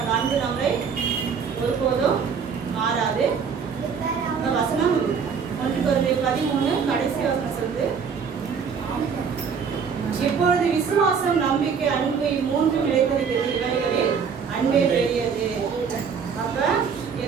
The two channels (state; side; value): quieter; left; 6.3 dB